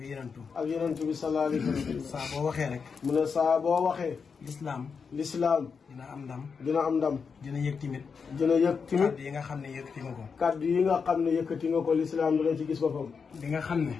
yenentu. ak yenentu bi sallallahu alayhi wa sallam. saa boo waxee rek. mu ne saa boo waxee. lislaam dina am ndam. dina am ndam. dina yëg timit. dina yëg timit. kaddu yi nga xam ne yëkkati nga ko. kaddu yi nga xam ne yëkkati nga ko lislaam dina ci gis boppam. li nga xam ne.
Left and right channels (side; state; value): right; quieter; 5.7 dB